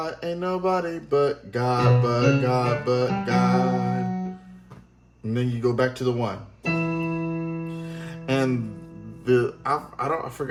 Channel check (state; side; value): identical; both; correlation 1.00